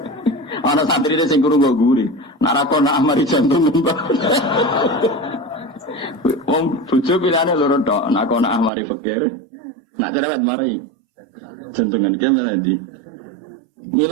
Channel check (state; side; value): drops out; left; at 8.7 s